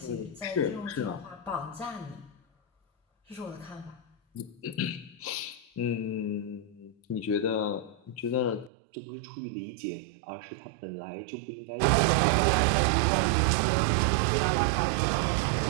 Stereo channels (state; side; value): drops out; left; at 8.7 s